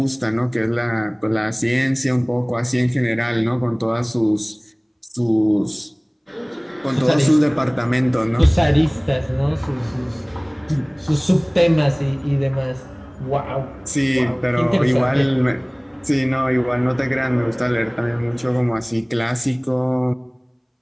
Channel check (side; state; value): both; identical; correlation 1.00